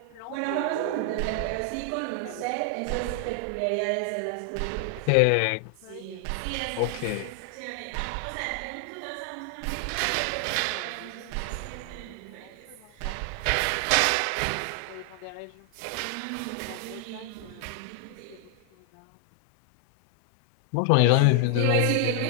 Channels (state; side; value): different; both; correlation 0.00